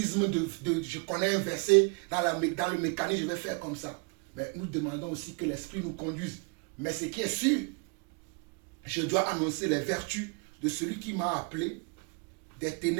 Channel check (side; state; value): left; quieter; 35.0 dB